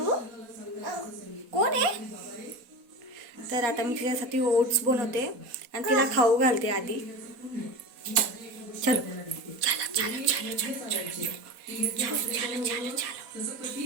कोण आहे? तर आता मी तिच्यासाठी ओट्स बनवते आणि तिला खाऊ घालते आधी. चलो चलो चलो चलो चलो चलो चलो चलो चलो चलो.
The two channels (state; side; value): late; left; 4.1 ms